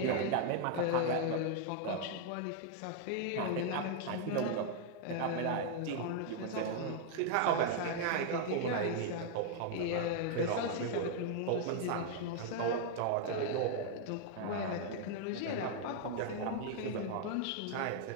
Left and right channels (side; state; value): both; different; correlation 0.00